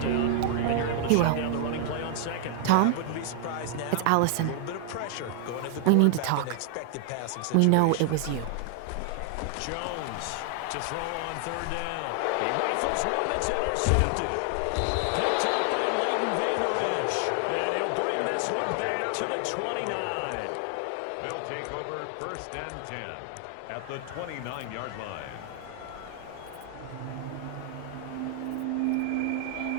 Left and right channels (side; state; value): both; different; correlation 0.00